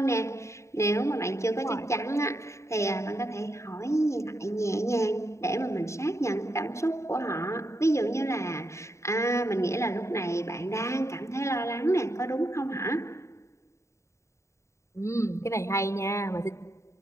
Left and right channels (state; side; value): late; right; 0.14 ms